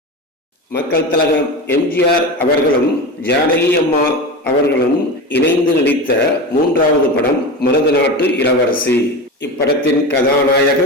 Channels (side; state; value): both; normal; correlation 0.25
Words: மக்கள் திலகம் எம்ஜிஆர் அவர்களும் ஜானகி அம்மா அவர்களும் இணைந்து நடித்த 3வது படம் மருதநாட்டு இளவரசி. இப்படத்தின்